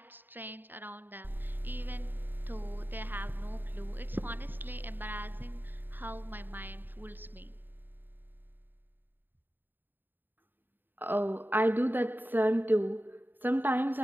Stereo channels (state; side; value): late; left; 0.093 ms